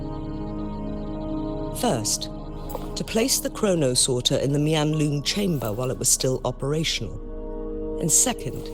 First, to place the chronosorter in the Mianlung chamber while it was still operational. And second,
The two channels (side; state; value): both; identical; correlation 1.00